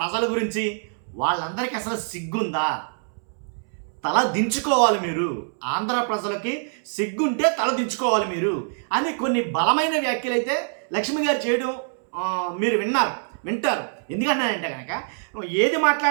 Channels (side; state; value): left; silent; 62 dB below the other